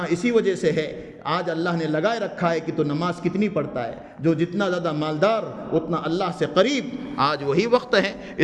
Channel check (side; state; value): both; identical; correlation 1.00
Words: اسی وجہ سے ہے. آج اللہ نے لگائے رکھا ہے کہ تو نماز کتنی پڑھتا ہے، جو جتنا زیادہ مالدار اتنا اللہ سے قریب. آج وہی وقت ہے،